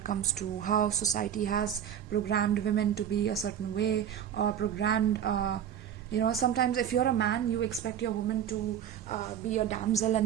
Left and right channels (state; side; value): quieter; left; 9.5 dB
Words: comes to how society has programmed women to be a certain way, or programmed sometimes if you're a man, you expect your woman to be a damsel,